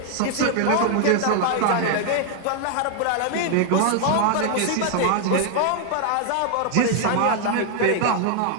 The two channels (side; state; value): both; different; correlation 0.00